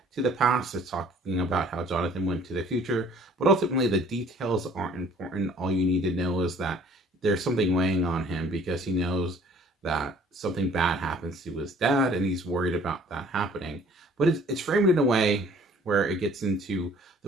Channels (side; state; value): both; normal; correlation 0.55